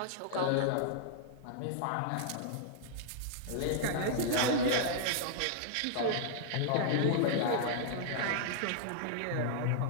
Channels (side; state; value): both; different; correlation -0.01